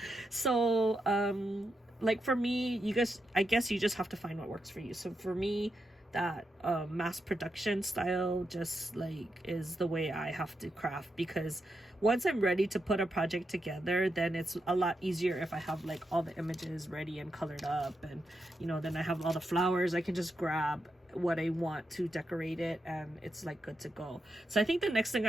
So like for me, you guys, I guess you just have to find what works for you. So for me, that mass production style just like is the way I have to craft, because once I'm ready to put a project together, then it's a lot easier if I have like all the images ready and colored up, and you know, then I have all the flowers. I can just grab what I want to decorate it and it's like good to go. So I think the next thing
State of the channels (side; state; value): both; normal; correlation 0.85